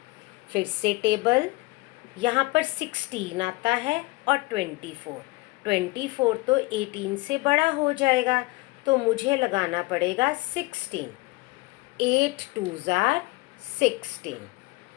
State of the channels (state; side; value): quieter; right; 23.0 dB